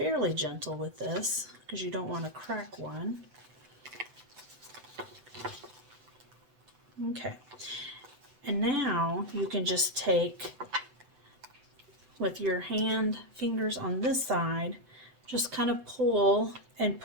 gentle with this because you don't want to crack one. Okay, and now you can just take, with your fingers on this side, just kind of pull and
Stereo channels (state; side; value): late; left; 7.9 ms